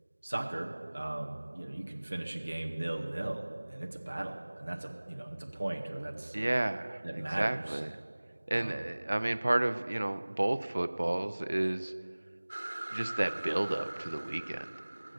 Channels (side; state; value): both; inverted; correlation -1.00